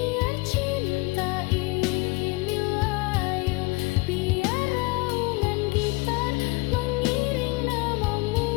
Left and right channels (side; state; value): right; quieter; 25.6 dB